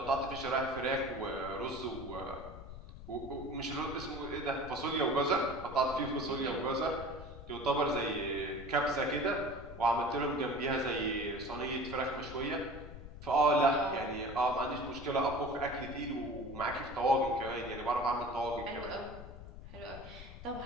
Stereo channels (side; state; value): left; noise; rumble, 13 dB below the sound